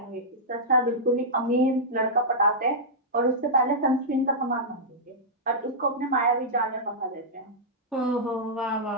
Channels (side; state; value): both; normal; correlation -0.10